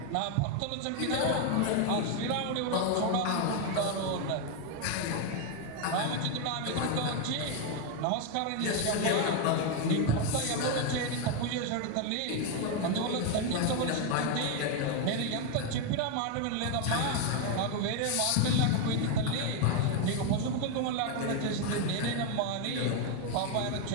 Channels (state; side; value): different; both; correlation 0.01